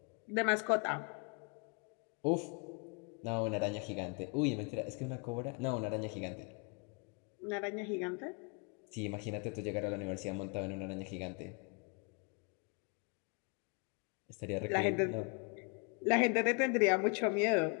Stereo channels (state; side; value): quieter; right; 34.7 dB